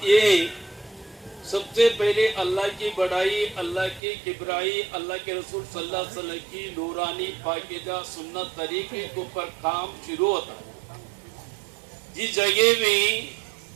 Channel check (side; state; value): left; drops out; at 4.0 s